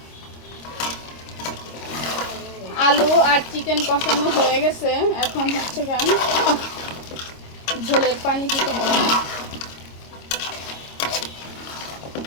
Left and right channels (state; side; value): late; right; 26 ms